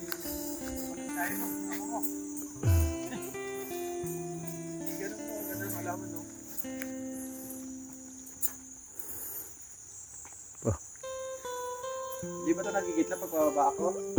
Kaya mo, ako mo. Ganun mo, ganun malaman, no? Di ba ito nagigitla pag bababa ako?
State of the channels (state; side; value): identical; both; correlation 1.00